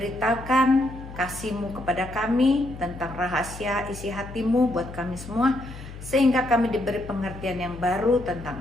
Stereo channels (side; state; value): left; noise; hum, 13 dB below the sound